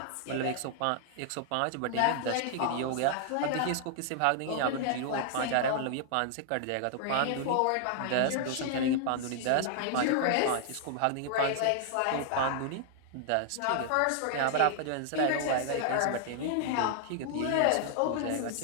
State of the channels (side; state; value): both; different; correlation -0.01